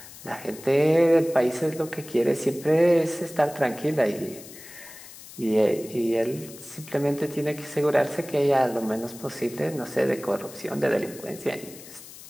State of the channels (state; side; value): noise; left; hiss, 17 dB below the sound